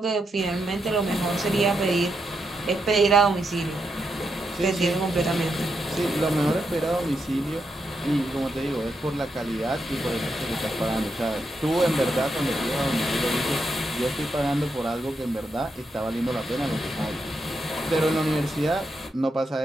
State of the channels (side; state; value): both; normal; correlation 0.83